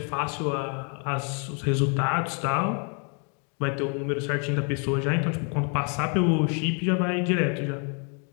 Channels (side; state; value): right; quieter; 39.0 dB